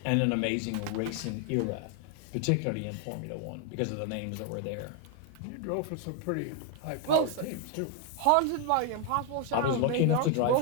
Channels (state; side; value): different; both; correlation 0.00